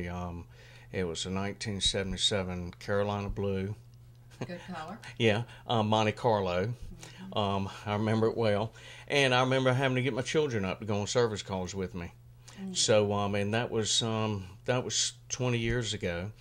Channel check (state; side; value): identical; both; correlation 1.00